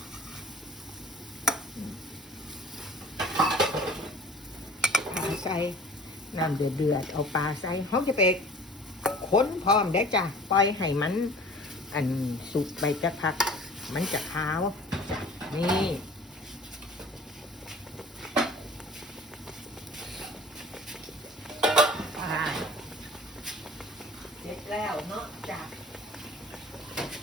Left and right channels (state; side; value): normal; both; correlation 0.46